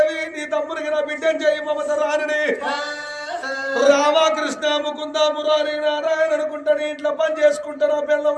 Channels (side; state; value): both; identical; correlation 1.00